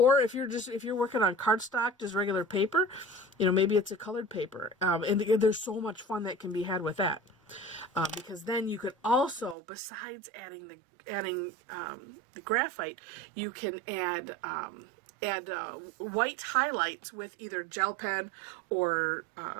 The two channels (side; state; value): left; drops out; at 9.6 s